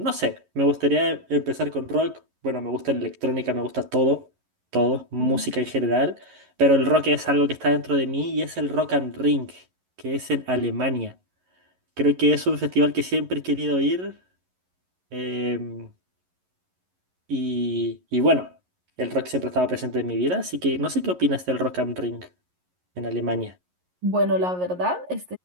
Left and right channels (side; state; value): left; late; 11 ms